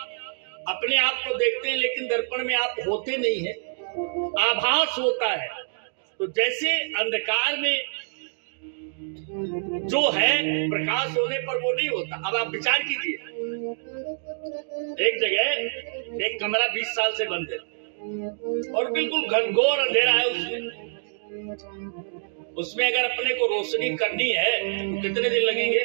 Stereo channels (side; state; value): left; silent; digital silence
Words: अपने आप को देखते हैं लेकिन दर्पण में आप होते नहीं हैं, आभास होता है। तो जैसे अंधकार में जो है प्रकाश होने पर वो नहीं होता। अब आप विचार कीजिए, एक जगह एक कमरा 20 साल से बंद है और बिल्कुल घनघोर अंधेरा है, उसमें अगर अपने को रोशनी करनी है तो कितने दिन लगेंगे?